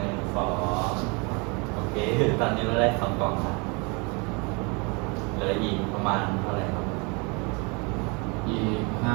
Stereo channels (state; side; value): quieter; left; 30.7 dB